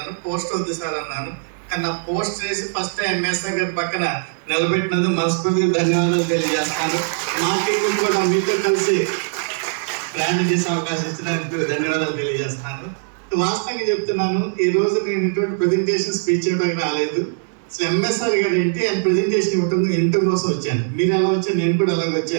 పోస్ట్ వద్దు సార్ అన్నాను. కానీ నా పోస్ట్ చేసి ఫస్ట్ ఎంఎస్ఆర్ గారి పక్కన నిలబెట్టినందుకు మనస్ఫూర్తిగా ధన్యవాదాలు తెలియజేస్తాను. మార్కెటింగ్ కూడా మీతో కలిసి ప్రయాణం చేసే అవకాశం ఇచ్చినందుకు ధన్యవాదాలు తెలియజేస్తాను. వాస్తవంగా చెప్తున్నాను, ఈ రోజు నేను ఇటువంటి ప్రెజెంటేషన్ స్పీచ్ చేయడానికి రాలేదు. అసలు ఎంఎస్ఆర్ గారు ఏంటి ఆయన ప్రెజెంటేషన్ ఇవ్వటం కోసం వచ్చాను. మీరు ఎలా వచ్చాను, నేను కూడా అలాగే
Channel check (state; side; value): silent; left; digital silence